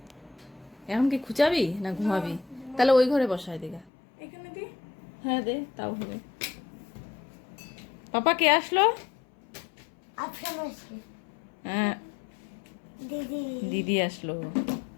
এখন কি খুঁচাবি না ঘুমাবি? তাহলে ওই ঘরে বসাই দে গা। এখানে দি। হ্যাঁ দে, তাও হবে। পাপা কে আসলো? আফসান আসছে। হ্যাঁ, দিদি। দিদি আসলো।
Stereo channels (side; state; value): right; drops out; at 3.9 s